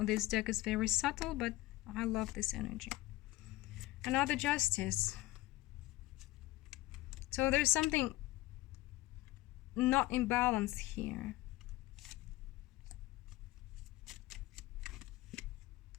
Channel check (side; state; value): right; quieter; 18.2 dB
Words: deck is very subtle, but I love this energy. Another Justice. So there's something not in balance here.